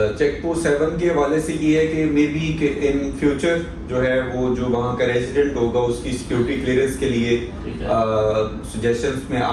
चेक पोस्ट 7 के हवाले से ये है कि मे बी इन फ्यूचर जो है वो जो वहाँ का रेजिडेंट होगा उसकी सिक्योरिटी क्लियरेंस के लिए सजेशंस में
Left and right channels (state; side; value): identical; both; correlation 1.00